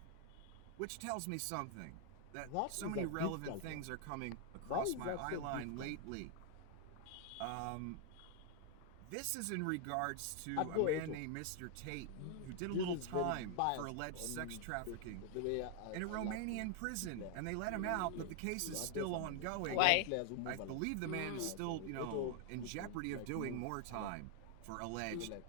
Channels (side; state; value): both; different; correlation 0.00